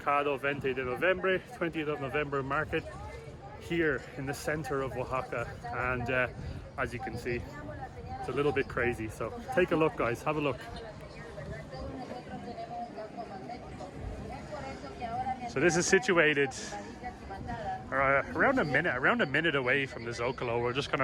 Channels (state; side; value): identical; both; correlation 1.00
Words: 20 de Noviembre, 20th of November market here in the center of Oaxaca, and as you can see, it's a little bit crazy. So take a look, guys, have a look. So this is situated around a minute away from the Zocalo. We're just going